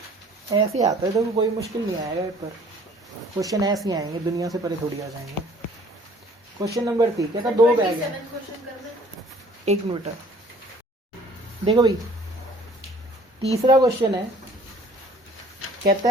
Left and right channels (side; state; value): both; normal; correlation 0.54